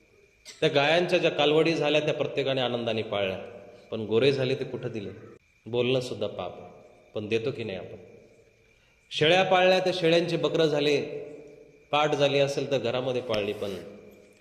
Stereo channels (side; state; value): both; identical; correlation 1.00